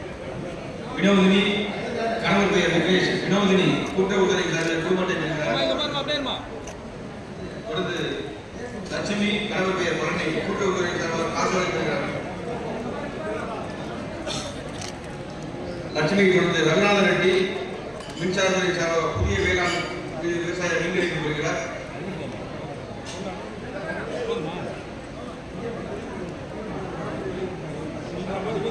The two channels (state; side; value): identical; both; correlation 1.00